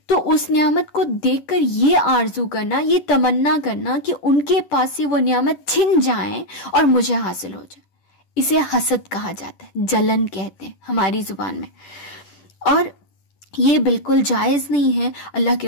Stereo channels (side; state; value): right; late; 10 ms